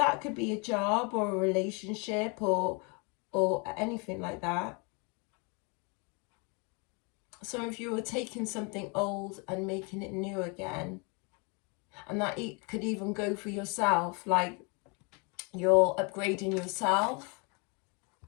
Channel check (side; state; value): right; quieter; 32.5 dB